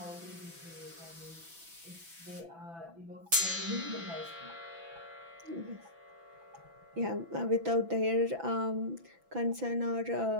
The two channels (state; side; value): late; left; 6.0 ms